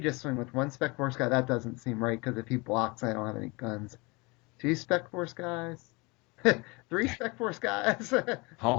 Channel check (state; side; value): quieter; right; 26.8 dB